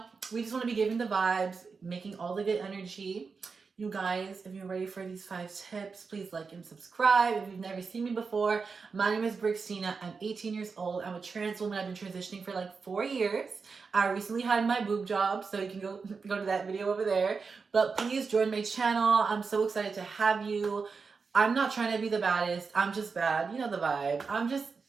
we just want to be giving the vibes, making all the good energy. You guys, if you're ready for these 5 tips, please like and subscribe. If you've never seen me before, my name is Brixtina. I'm 18 years old. I'm a trans woman. I've been transitioning for like 4 years. I recently had my boob job, so you can go to that video over there. But please join my channel. I'm so excited to have you. I'm not trying to be the baddest. I'm just bad. You know the vibe. I'm just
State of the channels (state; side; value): quieter; left; 5.0 dB